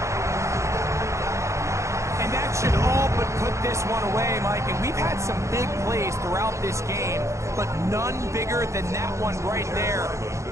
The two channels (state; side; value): late; left; 0.14 ms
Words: And that should all but put this one away, Mike. And we've had some big plays throughout this game, but none bigger than that one right there.